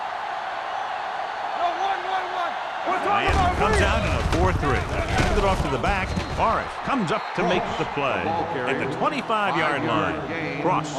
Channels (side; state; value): both; identical; correlation 1.00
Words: Miami comes out in a 4-3. Hands it off to the back. Morris comes up to make the play at the 25-yard line. Cross